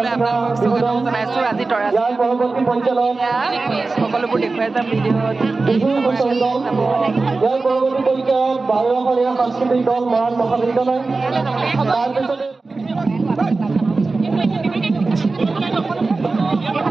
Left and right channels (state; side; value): quieter; left; 3.7 dB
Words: আপোনালোকক স্বাগতম জনাইছোঁ আজি তৰাজী সকলোবোৰ দেখুৱাই যাম ভিডিঅ'ত সাংস্কৃতিক দল মৰাণ মহাবিদ্যালয়